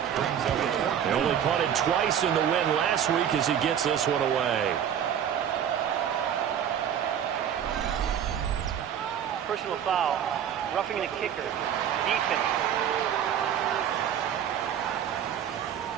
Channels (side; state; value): left; quieter; 9.1 dB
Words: Brings up a fourth. They only punted twice in the win last week as he gets this one away. Personal foul, roughing the kicker, defense.